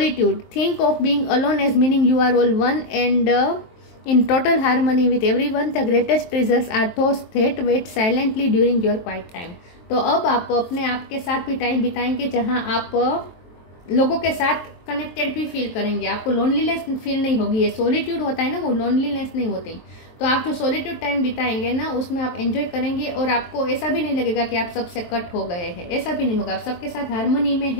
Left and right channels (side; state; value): right; late; 23 ms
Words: think of being alone as meaning you are all one and in total harmony with everyone. The greatest treasures are those that wait silently during your quiet time. तो अब आप अपने आप के साथ भी टाइम बिताएंगे जहां आप लोगों के साथ कनेक्टेड भी फील करेंगे, आपको लोनलीनेस फील नहीं होगी। ये सॉलिट्यूड होता है ना, वो लोनलीनेस नहीं होती। तो आप जो सॉलिट्यूड टाइम बिताएंगे ना, उसमें आप एंजॉय करेंगे और आपको ऐसा भी नहीं लगेगा कि आप सबसे कट हो गए हैं, ऐसा भी नहीं होगा। आप सबके साथ हारमोनी में